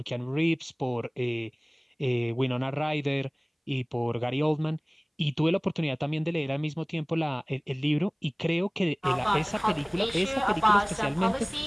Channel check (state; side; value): identical; both; correlation 1.00